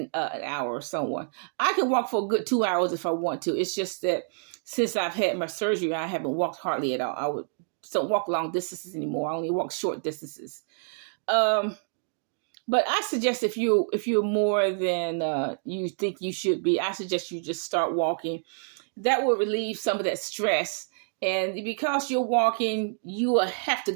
hour or so on. I can walk for a good 2 hours if I want to. It's just that since I've had my surgery, I haven't walked hardly at all. Don't walk long distances anymore. I only walk short distances. But I suggest if you're more than you think you should be, I suggest you just start walking. That will relieve some of that stress. And because you're walking, you will have to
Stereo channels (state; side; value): silent; left; digital silence